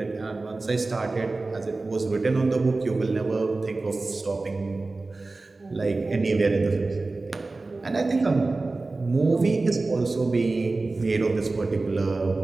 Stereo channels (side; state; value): left; quieter; 3.4 dB